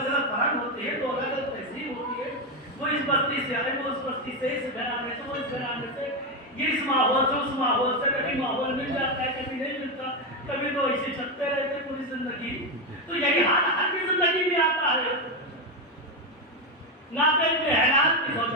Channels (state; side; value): normal; both; correlation 0.09